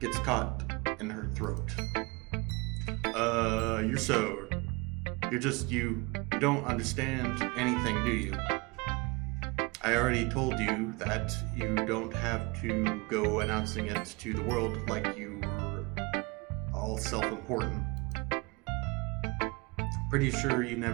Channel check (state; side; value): quieter; left; 27.2 dB